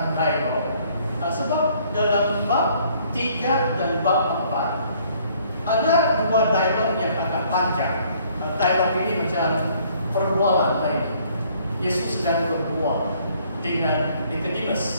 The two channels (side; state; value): both; inverted; correlation -0.62